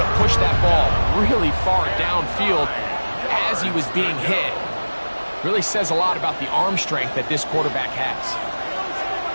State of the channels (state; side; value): inverted; both; correlation -1.00